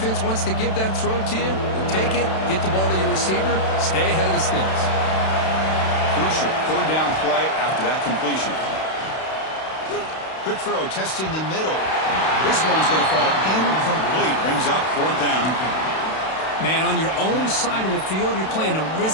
wants to give that throw to you. Take it, get the ball to your receiver, stay ahead of the sticks. Crucial 3rd down play after that completion. Quick throw, testing the middle. This one's going to fall incomplete. Brings up 4th down. Man, on your own side of the field, you're playing a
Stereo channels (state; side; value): late; right; 32 ms